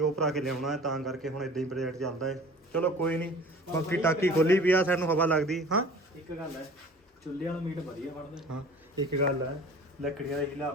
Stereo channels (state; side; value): normal; both; correlation 0.45